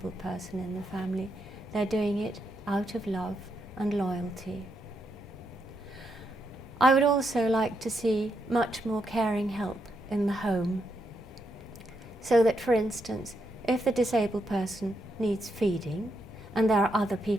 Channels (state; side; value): normal; both; correlation 0.81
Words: person in the family. They're doing it out of love and loyalty. I would also like to see much more caring help in the home, so that, for instance, if the disabled person needs feeding and there are other